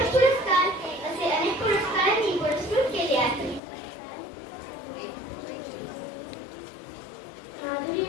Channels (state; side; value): drops out; right; at 3.6 s